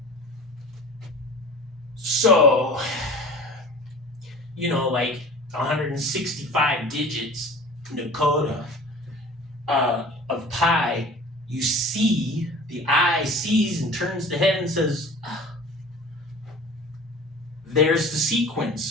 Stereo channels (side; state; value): both; normal; correlation 0.40